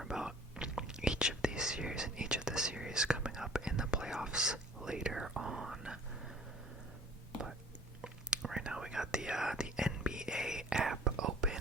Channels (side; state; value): both; normal; correlation 0.47